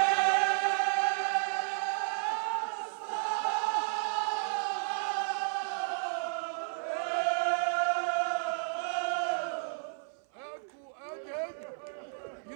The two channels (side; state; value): left; silent; 56 dB below the other